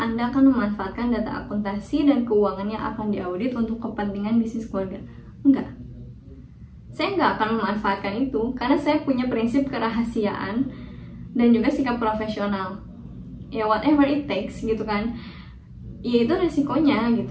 akan memanfaatkan data akuntansi dan keuangan yang akan diaudit untuk kepentingan bisnis keluarga? Enggak. Saya nggak akan memanfaatkan itu karena saya punya prinsip kerahasiaan dan juga sikap profesional. Ya whatever it takes gitu kan. Ya itu resikonya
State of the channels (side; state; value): both; identical; correlation 1.00